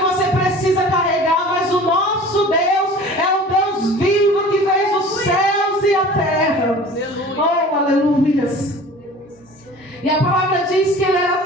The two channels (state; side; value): normal; both; correlation 0.43